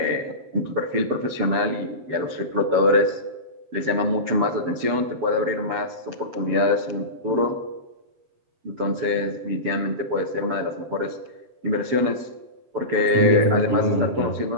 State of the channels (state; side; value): late; left; 7.6 ms